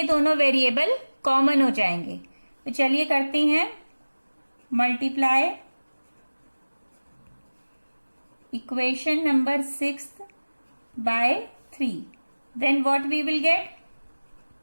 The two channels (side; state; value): both; inverted; correlation -1.00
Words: दोनों वेरिएबल कॉमन हो जाएंगे। तो चलिए करते हैं multiply equation number 6 by 3। Then what we will